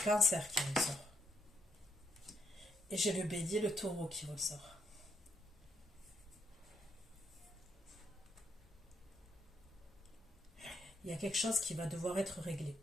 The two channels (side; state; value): both; normal; correlation 0.75